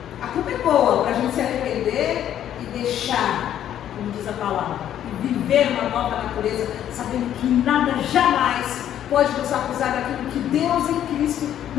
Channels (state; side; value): quieter; right; 10.8 dB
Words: A culpa é boa para a gente se arrepender e deixar, como diz a palavra, e viver uma nova natureza, sabendo que nada jamais pode nos acusar daquilo que Deus em Cristo